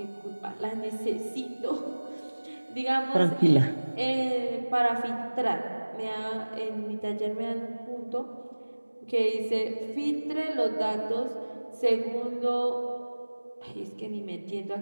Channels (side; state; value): both; inverted; correlation -1.00